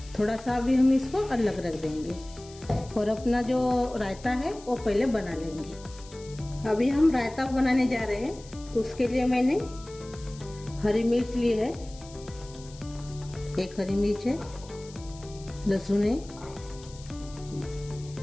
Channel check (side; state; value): left; noise; hiss, 20 dB below the sound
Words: थोड़ा सा अभी हम इसको अलग रख देंगे और अपना जो रायता है वो पहले बना लेंगे। अभी हम रायता बनाने जा रहे हैं, तो उसके लिए मैंने हरी मिर्च ली है, 1 हरी मिर्च है, लहसुन है,